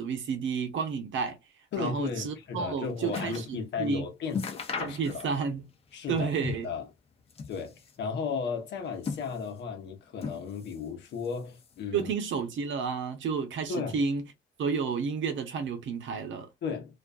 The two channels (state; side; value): normal; both; correlation 0.28